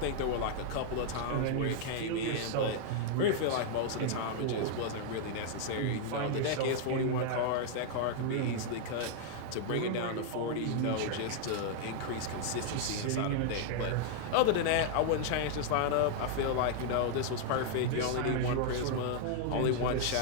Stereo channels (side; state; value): both; different; correlation -0.01